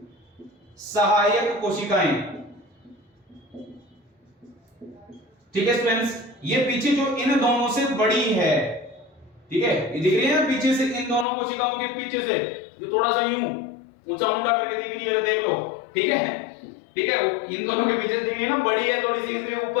सहायक कोशिकाएं। ठीक है स्टूडेंट्स, ये पीछे जो इन दोनों से बड़ी है, ठीक है, ये दिख रही है ना पीछे से, इन दोनों कोशिकाओं के पीछे से जो थोड़ा सा यूं ऊंचा मुंडा करके दिख रही है, देख लो। ठीक है, ठीक है, इन दोनों के पीछे दिख रही है ना, बड़ी है थोड़ी सी, इसलिए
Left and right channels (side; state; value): right; drops out; at 11.2 s